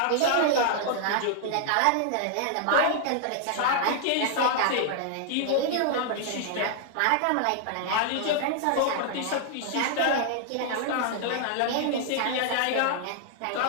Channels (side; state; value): both; different; correlation 0.00